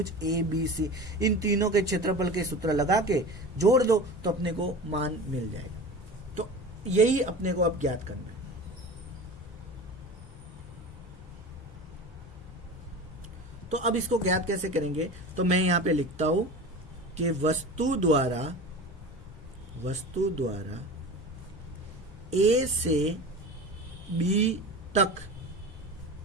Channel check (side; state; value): both; normal; correlation 0.33